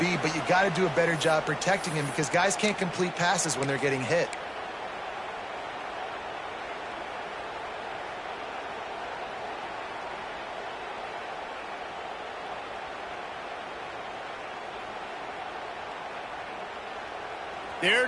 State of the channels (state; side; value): identical; both; correlation 1.00